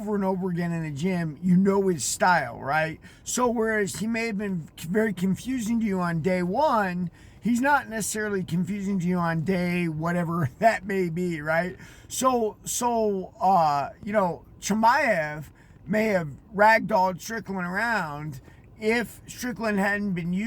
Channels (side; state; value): both; identical; correlation 1.00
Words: and over again in the gym, you know his style, right? So whereas he may have been very confusing to you on day one, he's not necessarily confusing to you on day whatever that may be, right? Chimaev may have ragdolled Strickland around if Strickland hadn't been